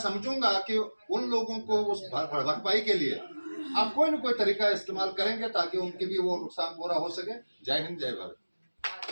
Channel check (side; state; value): both; inverted; correlation -1.00